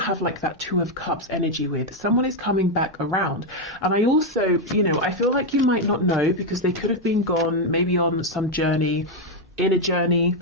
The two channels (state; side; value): normal; both; correlation 0.03